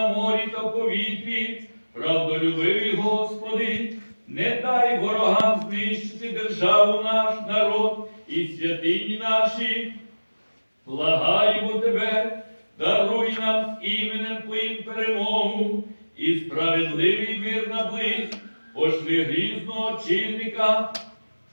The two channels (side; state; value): both; inverted; correlation -1.00